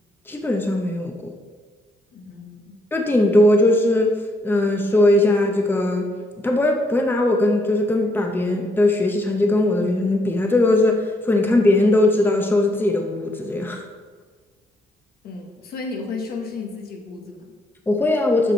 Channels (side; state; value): both; normal; correlation 0.73